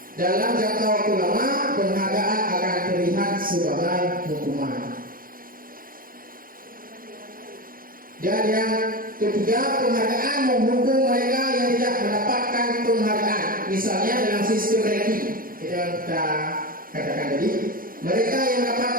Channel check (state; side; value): late; left; 0.41 ms